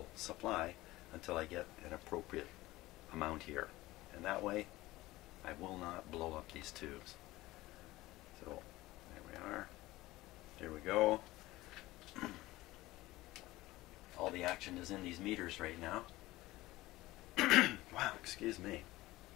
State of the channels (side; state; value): right; quieter; 18.2 dB